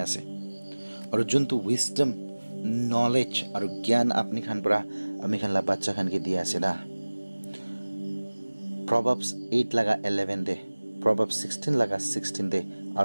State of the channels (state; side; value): inverted; both; correlation -1.00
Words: আছে আৰু যোনটো উইজডম নলেজ আৰু জ্ঞান আপুনি খান পৰা আমি খানলা বাচ্চা খানকে দিয়া আছে না Proverbs 8 laga 11 de Proverbs 16 laga 16 de